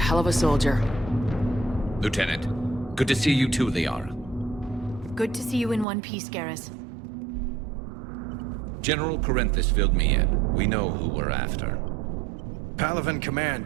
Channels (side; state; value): left; drops out; at 5.9 s